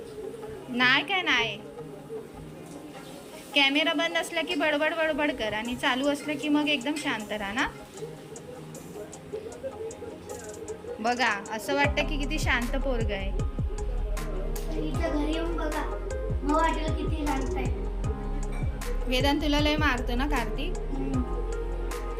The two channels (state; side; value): identical; both; correlation 1.00